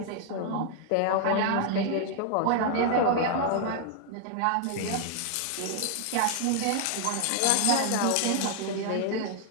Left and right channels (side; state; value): both; different; correlation 0.00